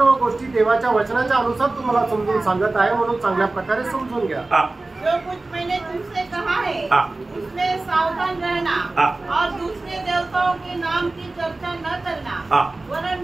गोष्टी देवाच्या वचनाच्या अनुसार तुम्हाला समजून सांगत आहे, म्हणून चांगल्या प्रकारे समजून घ्या. जो कुछ मैंने तुमसे कहा है उसमें सावधान रहना और दूसरे देवताओं के नाम की चर्चा न करना, वरन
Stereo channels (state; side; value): quieter; left; 3.1 dB